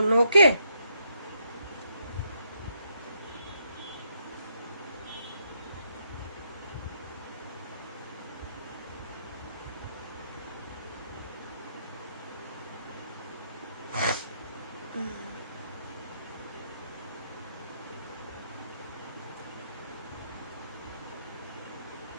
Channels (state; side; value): inverted; both; correlation -0.75